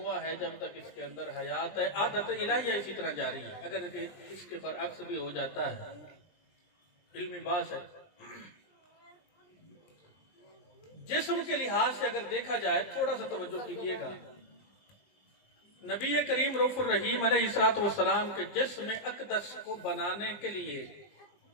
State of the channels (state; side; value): late; right; 19 ms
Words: ہے، جب تک اس کے اندر حیات ہے، عادت الہیہ اسی طرح جاری ہے۔ اگر اس کے برعکس بھی ہو جاتا ہے، علمی بات ہے۔ جسم کے لحاظ سے اگر دیکھا جائے، تھوڑا سا توجہ کیجیے گا، نبی کریم رؤوف الرحیم علیہ السلام کے جسم اقدس کو بنانے کے لیے